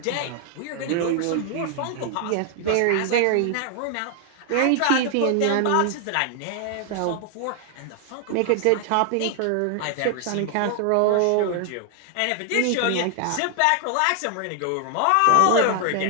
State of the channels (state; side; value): different; both; correlation 0.00